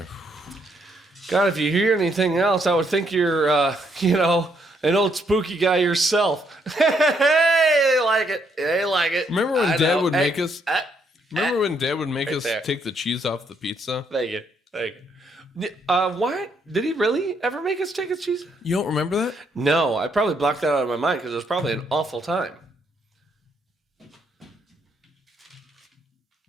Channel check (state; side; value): normal; both; correlation 0.73